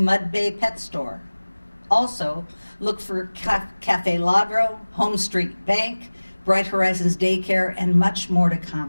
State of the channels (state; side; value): inverted; both; correlation -1.00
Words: Bay pet store. Also, look for Cafe Ladro, Home Street Bank, Bright Horizons Daycare, and much more to